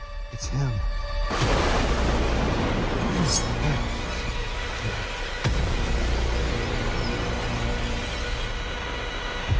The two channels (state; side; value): identical; both; correlation 1.00